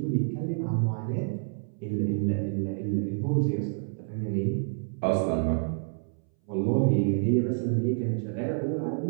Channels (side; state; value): left; silent; 59 dB below the other